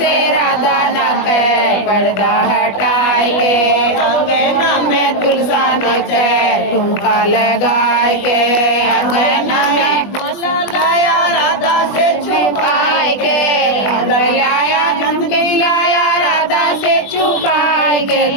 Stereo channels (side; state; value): right; late; 20 ms